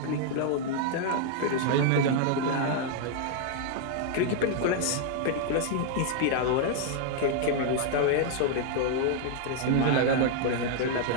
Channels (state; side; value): different; both; correlation 0.00